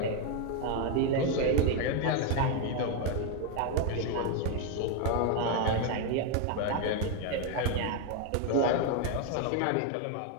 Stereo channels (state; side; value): different; both; correlation 0.01